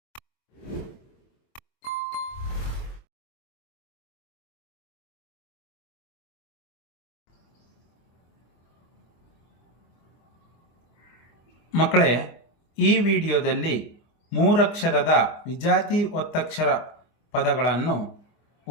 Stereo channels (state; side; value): late; right; 24 ms